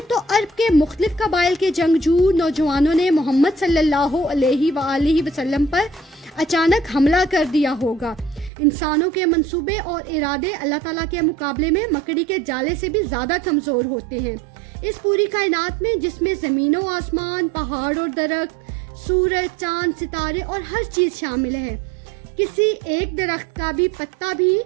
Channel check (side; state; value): left; drops out; at 8.5 s